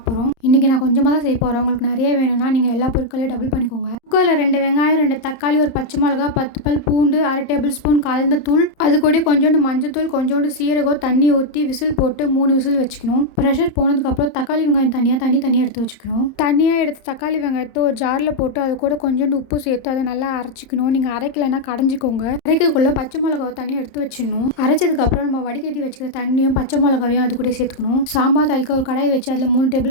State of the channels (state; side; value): late; right; 31 ms